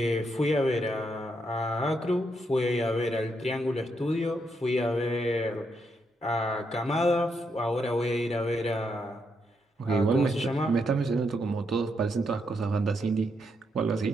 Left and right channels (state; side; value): normal; both; correlation 0.79